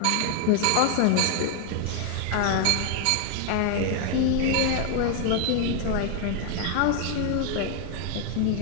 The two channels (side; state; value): both; different; correlation 0.00